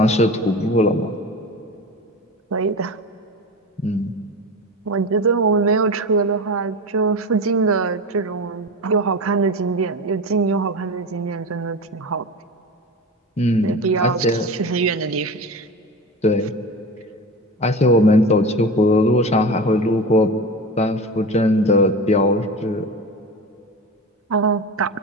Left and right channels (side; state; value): both; normal; correlation 0.28